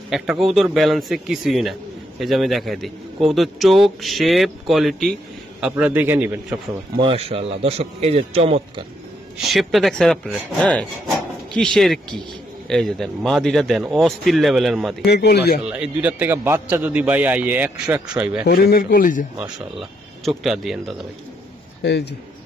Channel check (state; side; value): normal; both; correlation 0.76